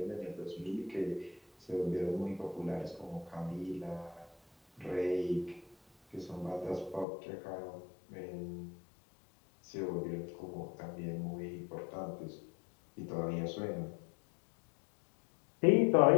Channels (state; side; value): drops out; right; at 7.1 s